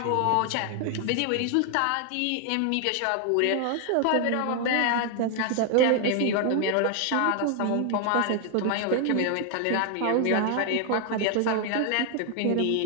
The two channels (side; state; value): both; different; correlation 0.00